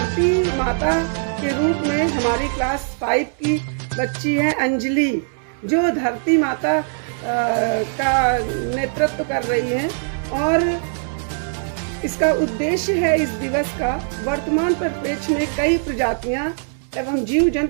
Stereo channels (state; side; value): silent; left; digital silence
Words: माता के रूप में हमारी क्लास 5 की बच्ची है अंजलि, जो धरती माता का नेतृत्व कर रही है। और इसका उद्देश्य है इस दिवस का, वर्तमान परिप्रेक्ष्य में कई प्रजातियां एवं जीव